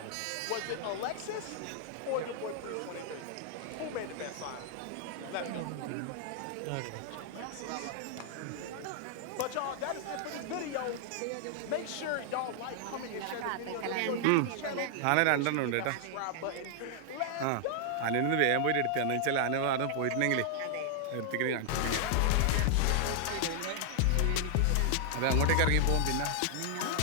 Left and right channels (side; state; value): both; different; correlation -0.01